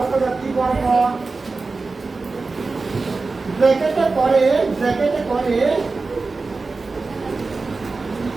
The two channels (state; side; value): quieter; left; 3.9 dB